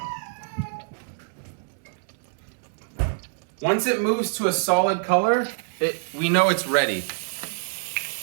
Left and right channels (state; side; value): silent; left; digital silence